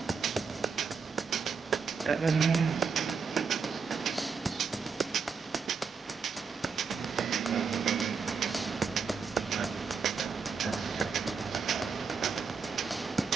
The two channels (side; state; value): left; quieter; 5.5 dB